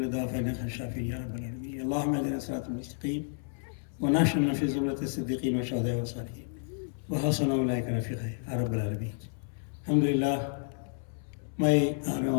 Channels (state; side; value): silent; right; 57 dB below the other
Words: داء فإنك خير الشافين يا رب العالمين اللهم اهدنا الصراط المستقيم ونحشرنا في زمرة الصديقين والشهداء والصالحين وحسن أولئك رفيقا يا رب العالمين الحمد لله